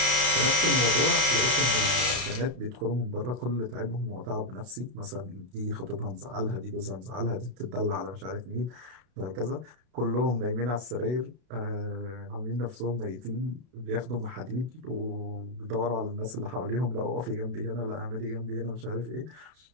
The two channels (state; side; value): late; left; 32 ms